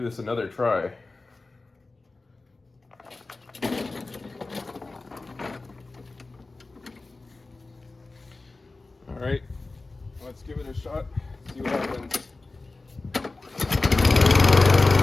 another try. All right, let's give it a shot, see what happens.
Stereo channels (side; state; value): right; quieter; 3.4 dB